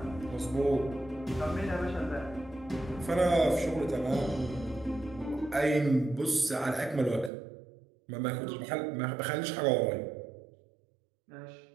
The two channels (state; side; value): drops out; left; at 7.3 s